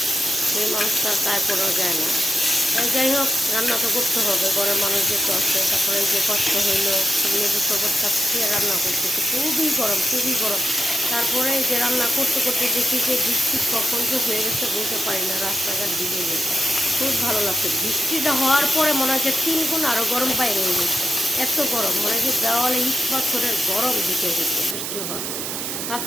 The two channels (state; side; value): noise; right; hiss, 4 dB below the sound